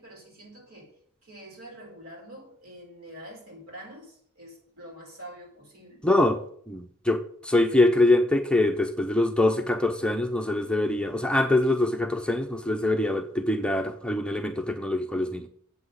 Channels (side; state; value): both; normal; correlation 0.79